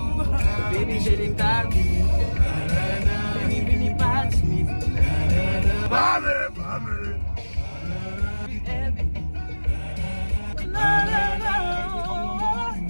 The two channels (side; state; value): both; inverted; correlation -1.00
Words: Baby, j'ai les tags. Baby, pas de Smith.